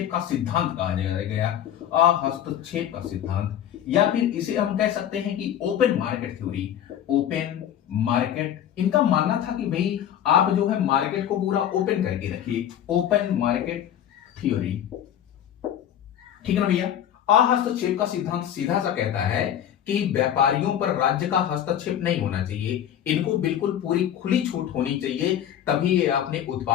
का सिद्धांत कहा गया। अहस्तक्षेप का सिद्धांत, या फिर इसे हम कह सकते हैं कि open market theory. Open market, इनका मानना था कि भाई आप जो है मार्केट को पूरा ओपन करके रखिए, ओपन मार्केट थ्योरी। ठीक है ना भैया? अहस्तक्षेप का सिद्धांत सीधा सा कहता है कि व्यापारियों पर राज्य का हस्तक्षेप नहीं होना चाहिए, इनको बिल्कुल पूरी खुली छूट होनी चाहिए, तभी ये अपने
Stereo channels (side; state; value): right; quieter; 10.3 dB